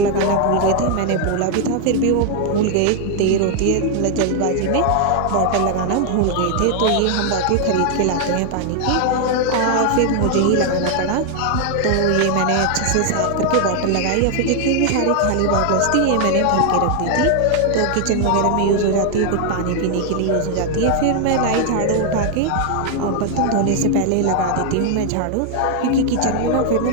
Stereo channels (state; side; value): different; both; correlation 0.00